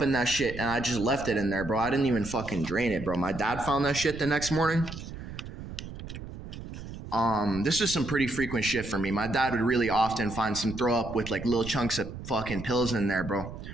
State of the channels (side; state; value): right; noise; rumble, 10 dB below the sound